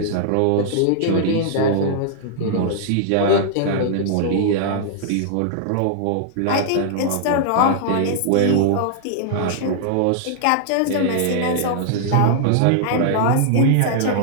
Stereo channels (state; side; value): different; both; correlation -0.01